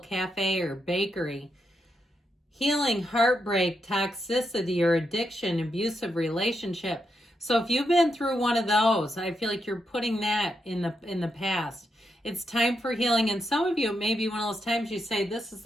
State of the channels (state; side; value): normal; both; correlation 0.83